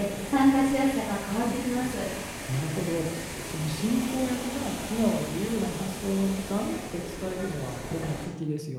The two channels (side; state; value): both; identical; correlation 1.00